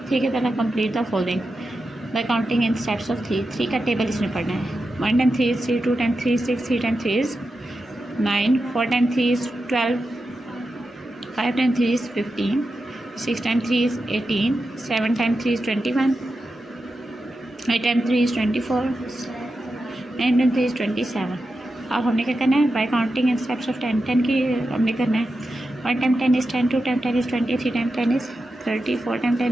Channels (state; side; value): normal; both; correlation 0.90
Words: 3 की तरह। Complete the following bye counting in steps of 3। 3 का टेबल इसमें पढ़ना है। 1 time 3 is 3, 2 time 3 is 6, 3 time 3 is 9, 4 time 3 is 12, 5 time 3 is 15, 6 time 3 is 18, 7 time 3 is 21, 8 time 3 is 24, 9 time 3 is 27। अब हमने क्या करना है, bye counting in steps of 10। 10 की हमने करना है। 1 time 10 is 10, 2 time 10 is 20, 3 time 10 is 30, 4 time